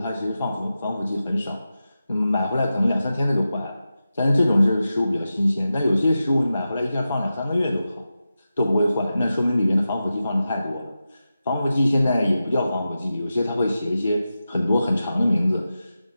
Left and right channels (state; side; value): inverted; both; correlation -0.92